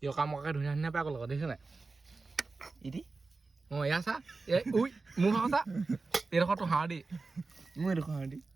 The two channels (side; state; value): left; quieter; 3.9 dB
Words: কামকে ধুনীয়া ধুনীয়া পাই গ'ল আকৌ দেখিছে নাই ইদি অঁ এয়া চা উই মোৰ ভাগ চা এইডোখৰটো হাঁহ দি মোৰ এইডোখৰ হাঁহ